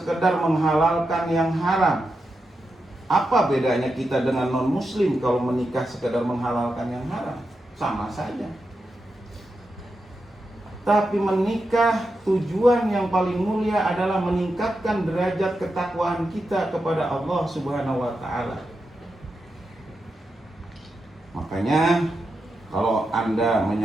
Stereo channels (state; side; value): normal; both; correlation 0.88